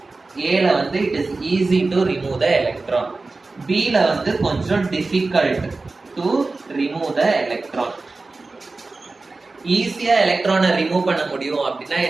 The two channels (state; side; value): quieter; left; 3.6 dB